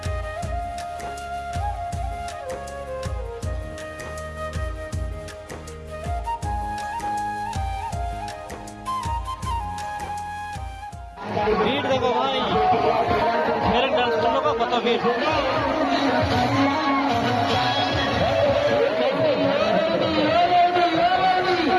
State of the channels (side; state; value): both; identical; correlation 1.00